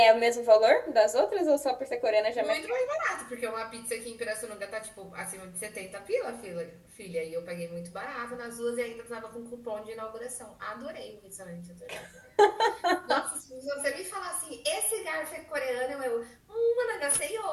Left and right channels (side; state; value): both; identical; correlation 1.00